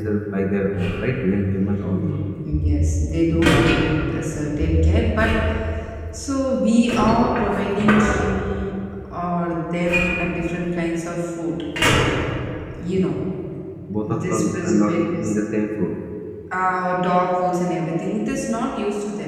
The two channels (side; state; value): both; identical; correlation 1.00